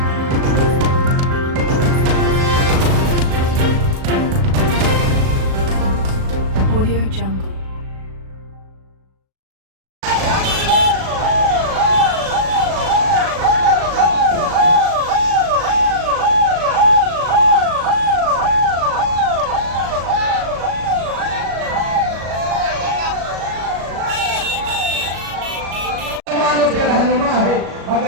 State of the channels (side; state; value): left; late; 37 ms